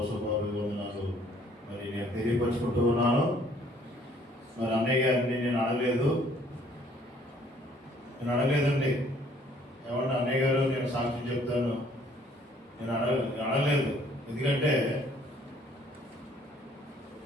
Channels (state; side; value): normal; both; correlation 0.60